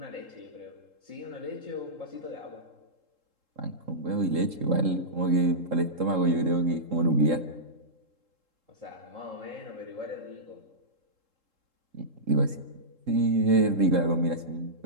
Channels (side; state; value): left; late; 3.7 ms